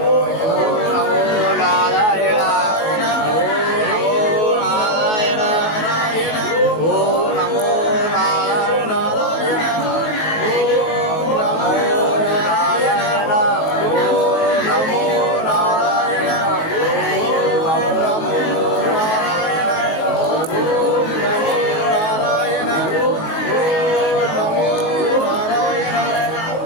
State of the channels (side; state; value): right; late; 19 ms